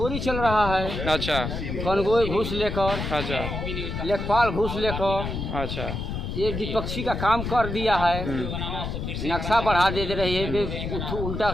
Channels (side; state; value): left; noise; rumble, 4 dB below the sound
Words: चल रहा है, अच्छा कनगोई घूस लेकर, अच्छा लेखपाल घूस लेकर, अच्छा ये विपक्षी का काम कर दिया है। नक्शा बढ़ा दे रही है, उल्टा